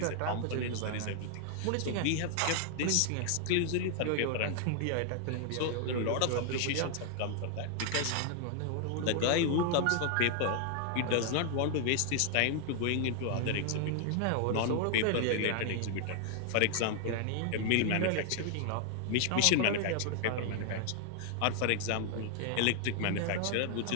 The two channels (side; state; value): both; different; correlation 0.00